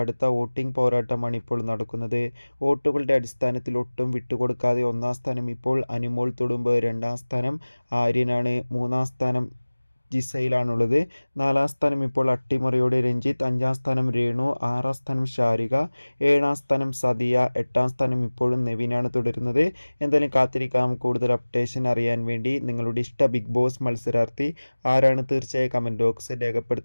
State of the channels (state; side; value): inverted; both; correlation -1.00